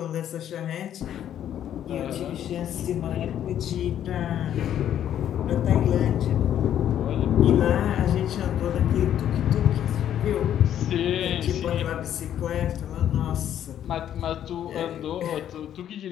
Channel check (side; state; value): right; quieter; 10.5 dB